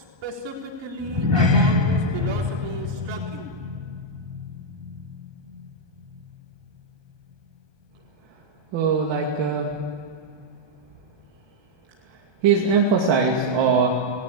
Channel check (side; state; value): left; late; 1.2 ms